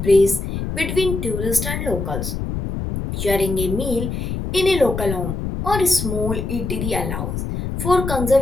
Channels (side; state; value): left; noise; rumble, 4 dB below the sound